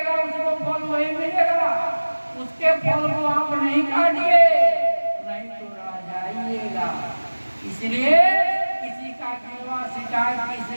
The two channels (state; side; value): inverted; both; correlation -1.00